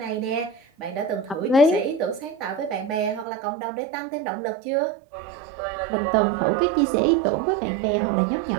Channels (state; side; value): drops out; left; at 3.2 s